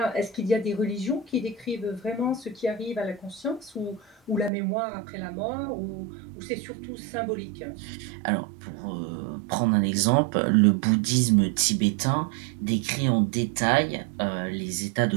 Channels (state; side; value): drops out; left; at 4.5 s